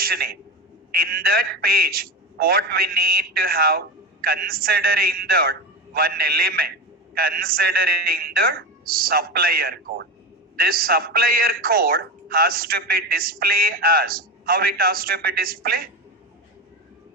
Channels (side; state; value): both; normal; correlation 0.22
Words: name. In that page, what we need to have, considering that one element, considering the supplier code. This supplier code has to be displayed as, how it has to be displayed?